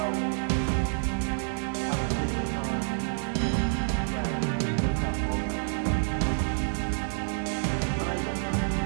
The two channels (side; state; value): left; silent; digital silence